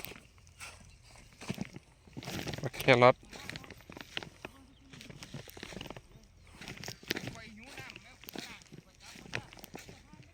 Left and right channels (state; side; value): identical; both; correlation 1.00